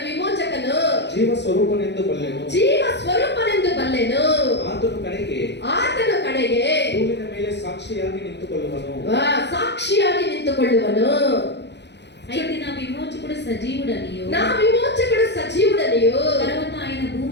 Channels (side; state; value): right; late; 0.50 ms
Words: విమోచకను, ಜೀವ ಸ್ವರೂಪನೆಂದು ಬಲ್ಲೆನು. జీవ స్వరూపನೆಂದು ಬಲ್ಲೆನು. ಆತನು ಕಡೆಗೆ ಭೂಮಿಯ ಮೇಲೆ ಸಾಕ್ಷಿಯಾಗಿ ನಿಂತುಕೊಳ್ಳುವನು. సాక్షియాಗಿ నింతుకొಳ್ಳುವನು. అయితే నా విమోచకుడు సజీవుడనియు, నా విమోచకుడు సజీవుడనియు, తర్వాత ఆయన